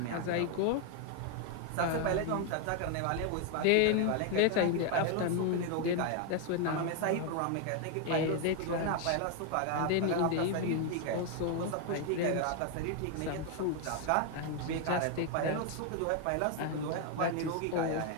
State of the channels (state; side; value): different; both; correlation 0.01